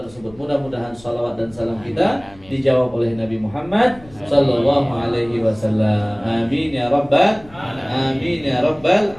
Mudah-mudahan salawat dan salam kita dijawab oleh Nabi Muhammad sallallahu alaihi wasallam. Amin ya rabbal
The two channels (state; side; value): noise; left; rumble, 24 dB below the sound